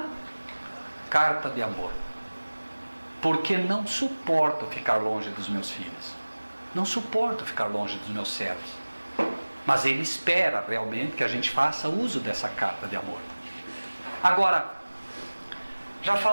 carta de amor, porque não suporto ficar longe dos meus filhos, não suporto ficar longe dos meus servos. Mas Ele espera realmente que a gente faça uso dessa carta de amor. Agora, já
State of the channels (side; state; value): both; inverted; correlation -1.00